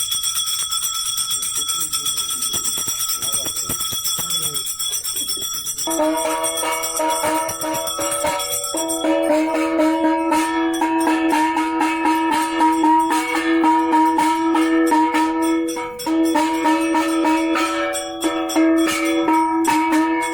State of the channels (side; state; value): right; noise; rumble, 25 dB below the sound